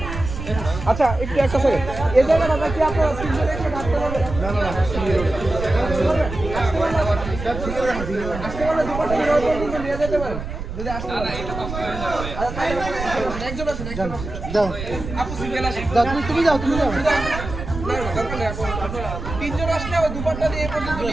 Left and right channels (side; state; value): right; noise; rumble, 7 dB below the sound